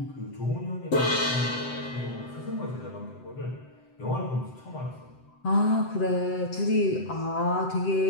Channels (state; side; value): late; right; 7.8 ms